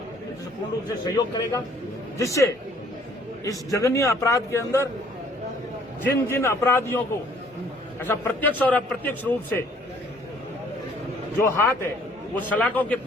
जैसे पूर्ण रूप से सहयोग करेगा, जिससे इस जघन्य अपराध के अंदर जिन जिन अपराधियों को ऐसा प्रत्यक्ष और अप्रत्यक्ष रूप से जो हाथ है वो सलाखों के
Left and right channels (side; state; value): both; normal; correlation 0.59